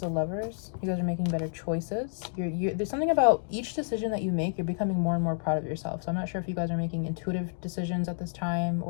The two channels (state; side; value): silent; right; digital silence